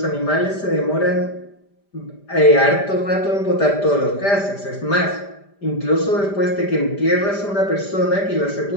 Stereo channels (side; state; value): right; late; 5.0 ms